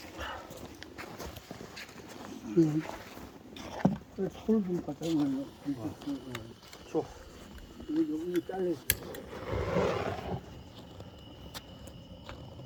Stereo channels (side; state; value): both; identical; correlation 1.00